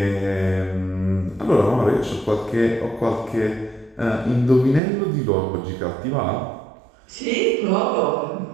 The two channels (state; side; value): drops out; left; at 4.8 s